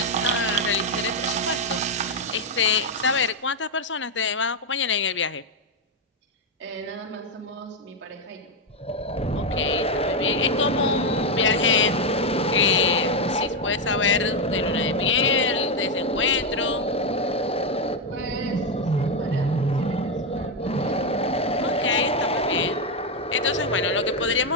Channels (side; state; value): both; normal; correlation 0.05